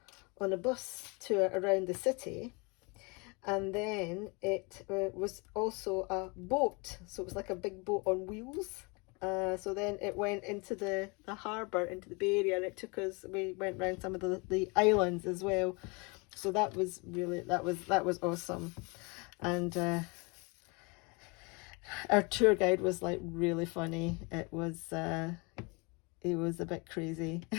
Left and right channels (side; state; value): right; quieter; 29.6 dB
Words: a bus tour around the city, and then it was also a boat, so it was like a big boat on wheels. So then it went into the harbour, into the Bay Area, and it took us, we went around some of the islands as well. So that was really, that was awesome. And our tour guide was like really funny. It was a bit crazy.